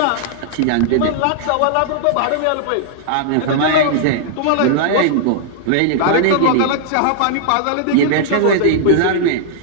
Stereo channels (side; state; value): both; different; correlation -0.01